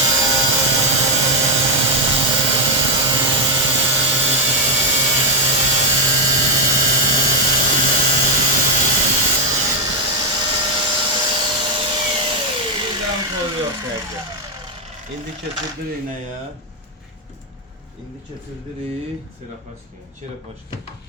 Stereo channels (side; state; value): both; normal; correlation 0.02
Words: İndi keçirdirik nəyə? İndi keçirdirik çerapaşka.